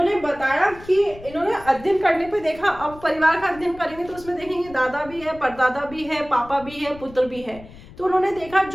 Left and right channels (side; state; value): left; noise; rumble, 19 dB below the sound